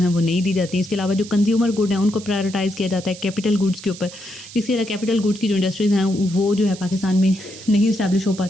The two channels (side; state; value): right; noise; hiss, 16 dB below the sound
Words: वो नहीं दी जाती हैं। इसके अलावा जो कंज्यूमर गुड हैं उनको प्रायोरिटाइज़ किया जाता है कैपिटल गुड्स के ऊपर, जिसके अलावा कैपिटल गुड्स की जो इंडस्ट्रीज़ हैं वो जो है पाकिस्तान में नहीं इस्टेब्लिश हो